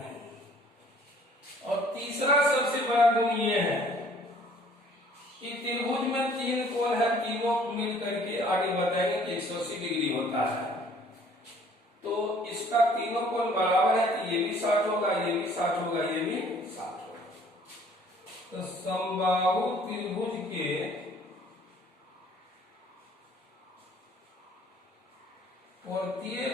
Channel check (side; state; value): both; normal; correlation 0.57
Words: और तीसरा सबसे बड़ा गुण ये है कि त्रिभुज में 3 कोण है, तीनों मिल करके आगे बताएंगे कि 180 डिग्री होता है। तो इसका तीनों कोण बराबर है, तो ये भी 60 होगा, ये भी 60 होगा, ये भी 60 होगा। तो समबाहु त्रिभुज के प्रत्येक